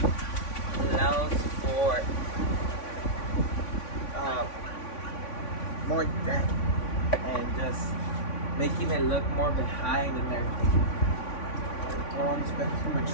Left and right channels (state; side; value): late; right; 3.5 ms